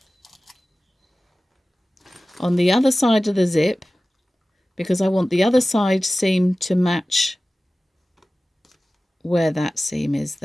on the other side of the zip, because I want the other side seam to match where that seam is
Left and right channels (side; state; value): both; normal; correlation 0.96